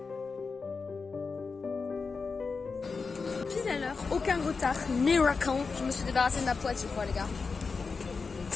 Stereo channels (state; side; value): quieter; right; 4.7 dB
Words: Pile à l'heure, aucun retard, miracle. Je me suis débarrassée de ma poids, je crois, les gars.